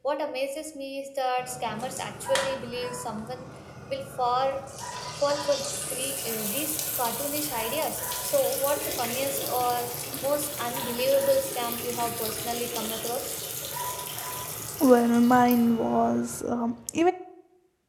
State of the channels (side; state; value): both; identical; correlation 1.00